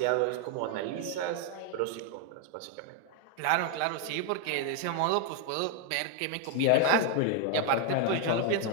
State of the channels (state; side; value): different; both; correlation 0.00